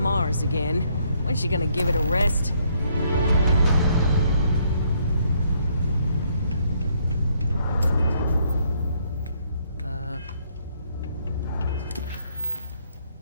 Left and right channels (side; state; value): both; inverted; correlation -0.69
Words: again. When's she gonna give it a rest?